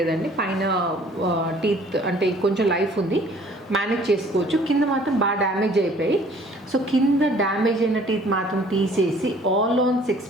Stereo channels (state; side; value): normal; both; correlation 0.55